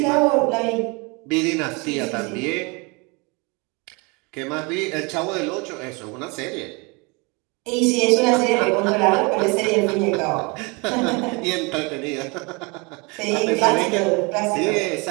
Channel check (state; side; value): quieter; left; 28.8 dB